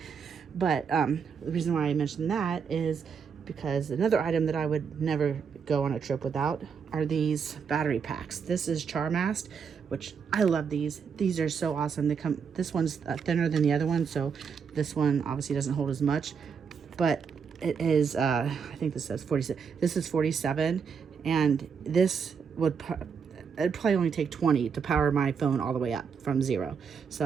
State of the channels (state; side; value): quieter; left; 6.3 dB